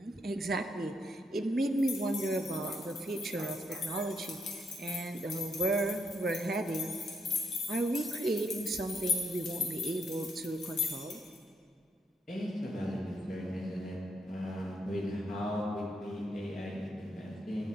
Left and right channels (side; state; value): both; normal; correlation 0.77